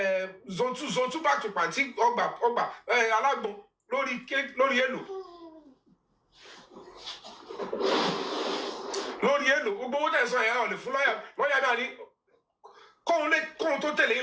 zone 2 back to party ọgbà alágbọn lórí èlò gbogbo owó tẹ̀sán ẹ̀ ọ̀ lè fún lọ́yà náà ní kóhun tó tẹ̀lé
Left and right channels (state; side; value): identical; both; correlation 1.00